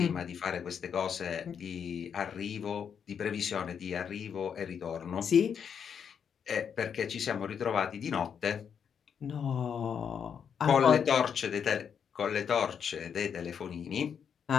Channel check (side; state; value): right; quieter; 7.4 dB